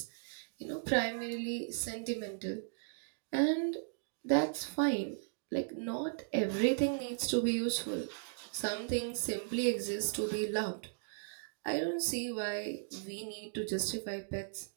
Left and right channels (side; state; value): left; silent; digital silence